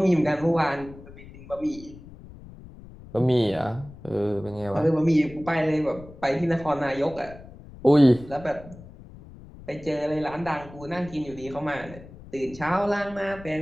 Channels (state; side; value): noise; left; rumble, 18 dB below the sound